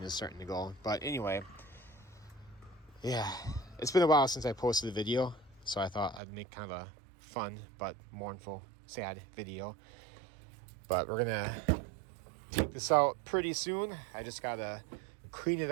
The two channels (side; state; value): left; drops out; at 6.2 s